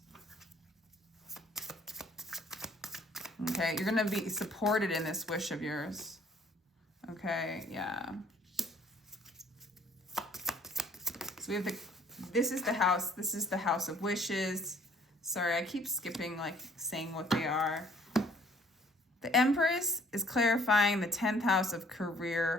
Okay, you're going to be supported in this wish of yours. Okay, yeah. So we have this is the house of wishes. Sorry, I keep skipping, like, saying what they are. The Empress is clarifying the 10th house of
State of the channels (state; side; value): normal; both; correlation 0.59